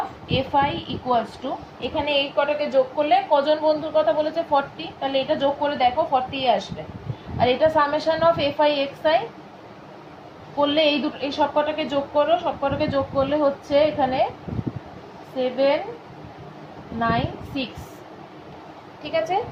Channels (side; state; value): both; identical; correlation 1.00